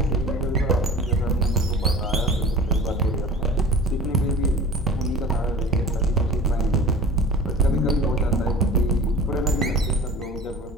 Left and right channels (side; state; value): both; normal; correlation 0.39